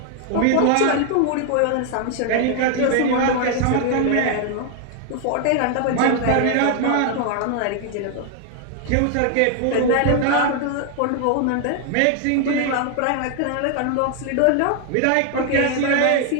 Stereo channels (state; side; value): different; both; correlation 0.00